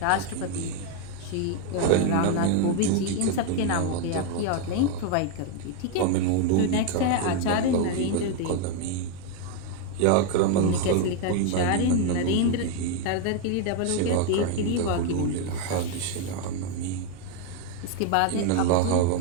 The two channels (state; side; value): different; both; correlation 0.01